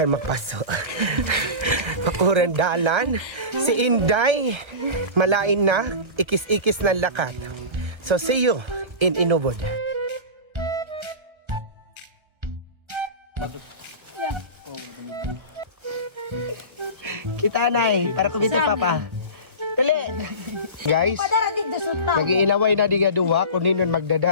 magpaso. Pakuran dalan si Inday malain na ikis-ikis ng lakat. So see you in Inubod. Kita nay para kumita papa. Dali. Guys, nag-iinaway na di nga duwa kung ninon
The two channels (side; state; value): left; late; 1.4 ms